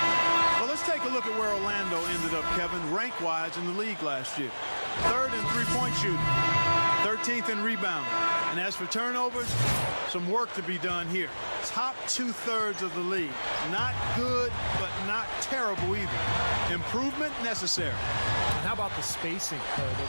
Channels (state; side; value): inverted; both; correlation -1.00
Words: Well, let's take a look at where Orlando ended up, Kevin, rank-wise in the league last year. 3rd in three-point shooting, 13th in rebounding. And as for turnovers, some work to be done here. top 2/3 of the league. Not good, but not terrible either. Improvement necessary. And how about the spacing